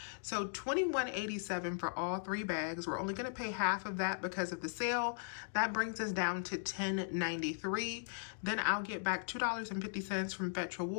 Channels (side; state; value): right; silent; digital silence